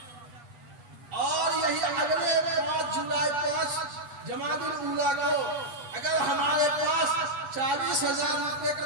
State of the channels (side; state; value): left; late; 8.3 ms